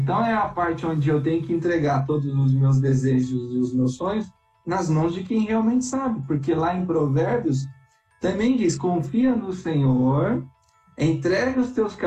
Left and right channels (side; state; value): both; identical; correlation 1.00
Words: é a parte onde eu tenho que entregar todos os meus desejos e os meus sonhos nas mãos de quem realmente sabe, porque lá em Provérbios também diz, confia no Senhor, entrega os teus